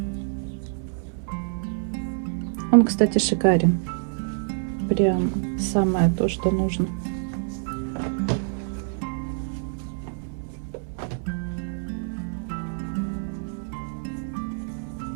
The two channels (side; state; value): left; silent; digital silence